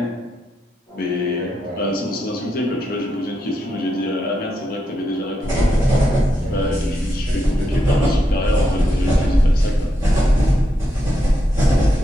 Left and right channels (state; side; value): normal; both; correlation 0.83